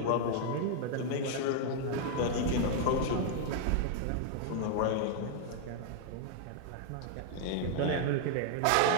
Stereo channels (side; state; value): both; different; correlation -0.01